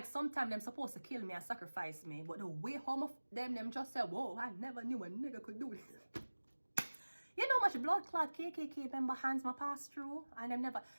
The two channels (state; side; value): inverted; both; correlation -1.00